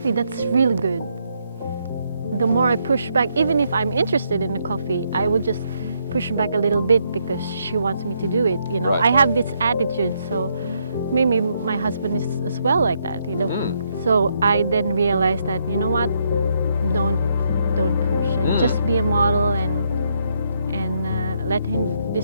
that's really good. The more I push back, even if I'm interested in the coffee, I would just push back a little bit because she wants me to do it, you know. Right. I have this attitude, so maybe my husband is as well like that, you know. So I then realized that, you know what, don't push, and just be a model, and let him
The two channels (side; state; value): both; inverted; correlation -0.76